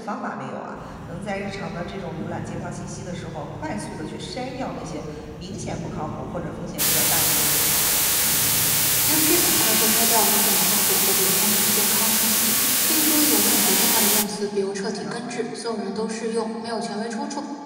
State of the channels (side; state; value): both; identical; correlation 1.00